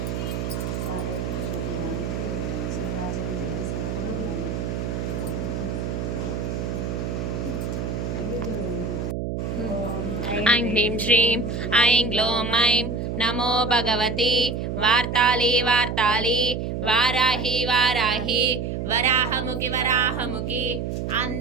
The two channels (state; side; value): noise; right; hum, 3 dB below the sound